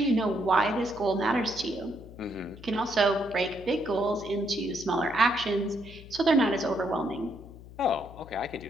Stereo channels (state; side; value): noise; left; hum, 17 dB below the sound